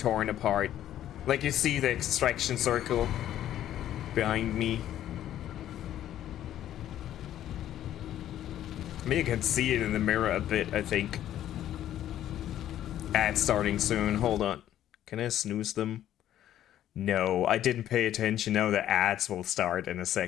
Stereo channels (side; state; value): right; quieter; 11.8 dB